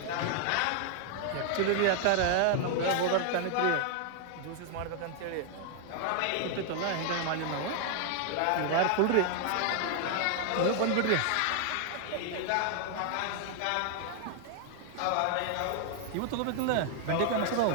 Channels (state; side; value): different; both; correlation 0.00